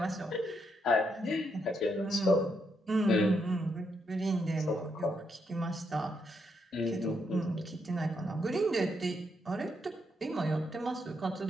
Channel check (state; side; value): normal; both; correlation 0.78